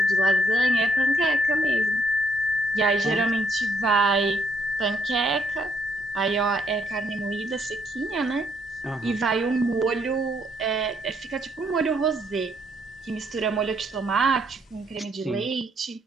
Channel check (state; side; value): normal; both; correlation 0.70